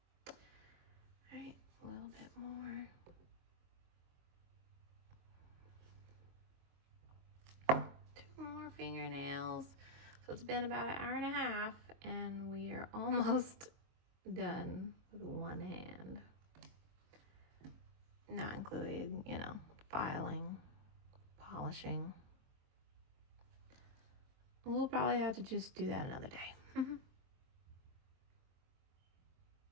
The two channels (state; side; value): late; left; 23 ms